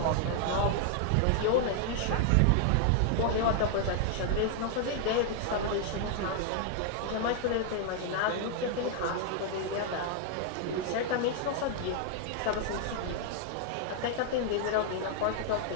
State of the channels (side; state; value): both; different; correlation 0.00